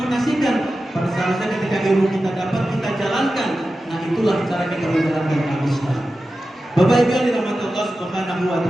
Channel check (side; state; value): both; normal; correlation 0.93